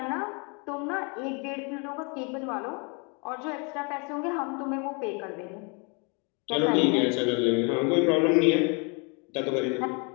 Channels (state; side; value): quieter; right; 33.3 dB